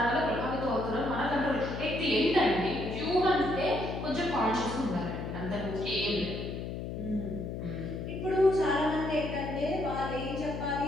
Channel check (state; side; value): noise; left; hum, 6 dB below the sound